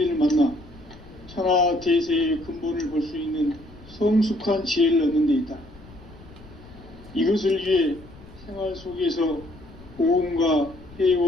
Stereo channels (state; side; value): noise; left; rumble, 21 dB below the sound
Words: 만나 천하 대세의 근본을 볼 수 있는 성숙한 지혜를 얻는 데 있다. 이것을 위해 생활 속에서 보험과